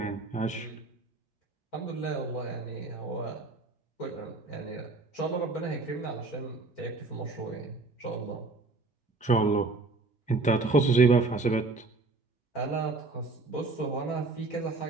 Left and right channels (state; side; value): quieter; left; 3.6 dB